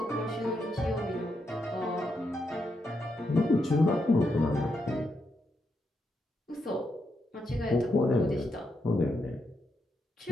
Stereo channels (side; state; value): both; normal; correlation 0.82